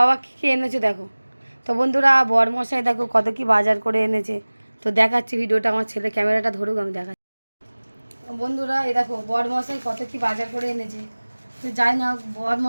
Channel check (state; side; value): inverted; both; correlation -1.00